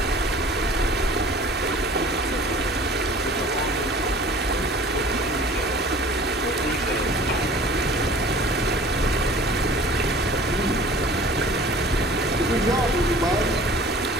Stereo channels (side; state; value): both; normal; correlation 0.47